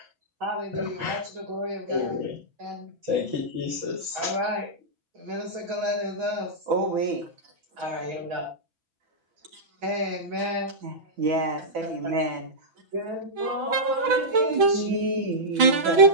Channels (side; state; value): left; late; 6.1 ms